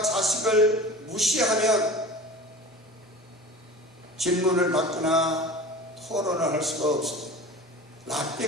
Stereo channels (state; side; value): normal; both; correlation 0.37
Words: 자식을 무시하면 질문을 받거나 토론을 할 수가 없습니다.